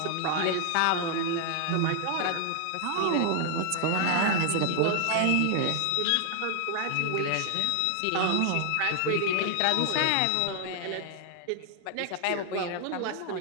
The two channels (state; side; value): different; both; correlation 0.00